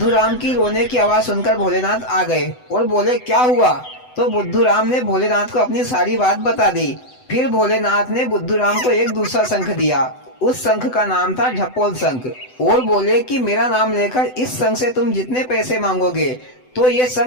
राम की रोने की आवाज सुनकर भोलेनाथ आ गए और बोले, क्या हुआ? तो बुद्धू राम ने भोलेनाथ को अपनी सारी बात बता दी। फिर भोलेनाथ ने बुद्धू राम को एक दूसरा शंख दिया। उस शंख का नाम था ढपोल शंख और बोले कि मेरा नाम लेकर इस शंख से तुम जितने पैसे मांगोगे तो ये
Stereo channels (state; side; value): late; right; 7.9 ms